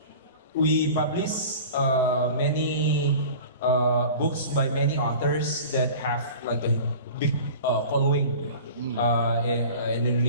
we publish many books by many authors that have like a big following in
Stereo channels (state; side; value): inverted; both; correlation -0.39